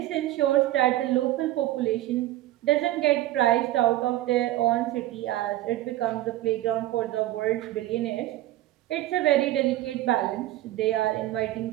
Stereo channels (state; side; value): quieter; left; 15.3 dB